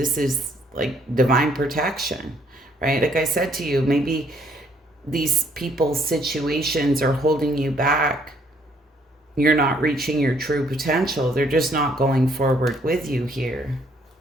is like divine protection, right? Like I said to you, maybe these people's situations are holding you back. You're not reaching your true potential. They're just not going forward with you here.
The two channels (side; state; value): both; normal; correlation 0.66